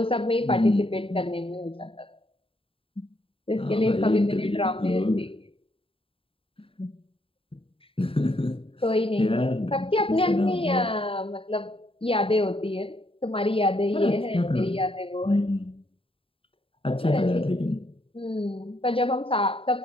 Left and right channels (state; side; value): late; right; 0.27 ms